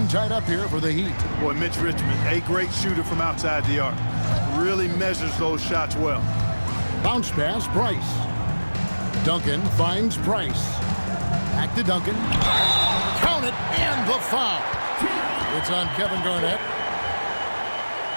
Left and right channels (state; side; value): inverted; both; correlation -1.00